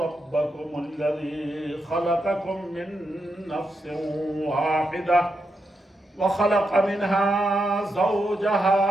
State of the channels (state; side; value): normal; both; correlation 0.84